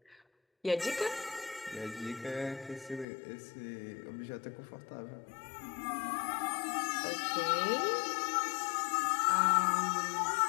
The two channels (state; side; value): drops out; right; at 3.1 s